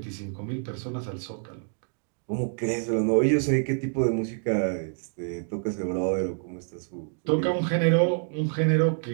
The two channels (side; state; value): left; silent; digital silence